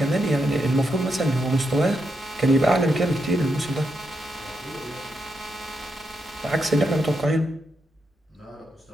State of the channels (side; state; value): both; normal; correlation 0.83